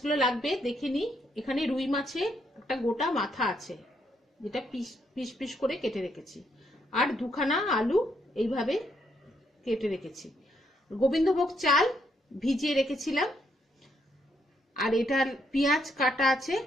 লাগবে দেখে নিই। এখানে রুই মাছের একটা গোটা মাথা আছে, যেটা পিস পিস করে কেটে রেখেছি, আর দুখানা আলু এইভাবে কেটে রেখেছি। গোবিন্দভোগ চাল ভিজিয়ে রেখেছিলাম, আর এটার পেঁয়াজ কাটা আছে,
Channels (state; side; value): normal; both; correlation 0.74